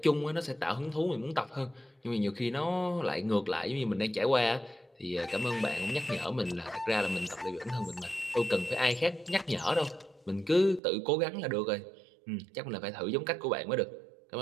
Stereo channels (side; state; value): left; drops out; at 10.8 s